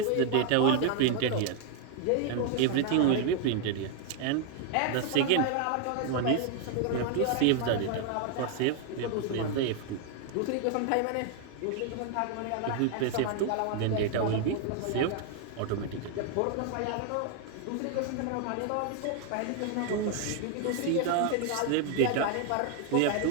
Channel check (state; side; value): different; both; correlation 0.00